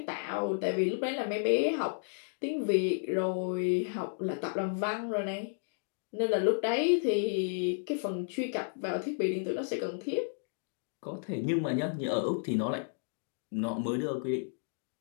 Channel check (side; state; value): right; silent; digital silence